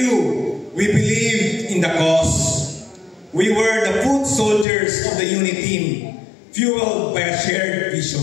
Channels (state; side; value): drops out; right; at 4.7 s